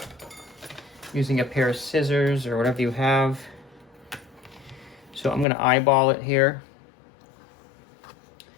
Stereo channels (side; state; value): right; drops out; at 5.5 s